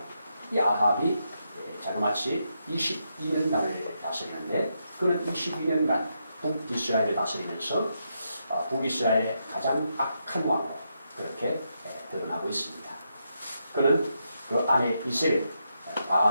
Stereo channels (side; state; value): both; inverted; correlation -0.82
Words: 이 아합이 자그마치 22년간을 다스리는데 그는 22년간 북이스라엘을 다스리면서 북이스라엘의 가장 악한 왕으로 그렇게 드러나고 있습니다. 그는 그 아내 이세벨,